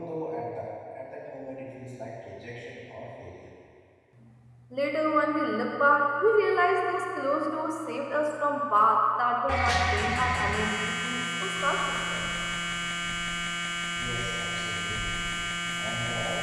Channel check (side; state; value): both; identical; correlation 1.00